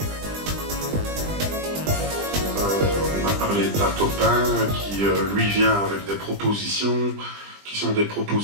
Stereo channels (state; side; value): late; left; 20 ms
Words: On a parlé de Batopin qui lui vient avec des propositions qui sont des